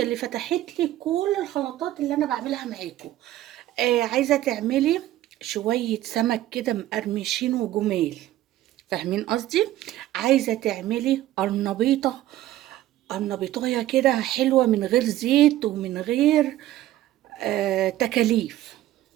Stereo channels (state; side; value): quieter; left; 14.3 dB